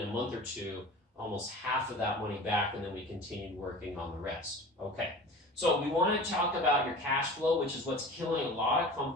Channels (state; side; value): normal; both; correlation 0.38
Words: a month or 2, almost half of that money back, and then we continued working on the rest. Okay, so we want to talk about your cash flow, which is what's killing a lot of